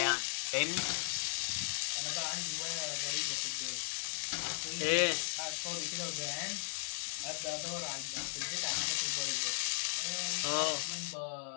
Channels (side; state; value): right; silent; 53 dB below the other